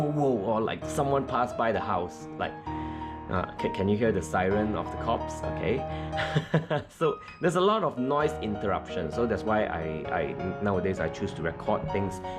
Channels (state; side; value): identical; both; correlation 1.00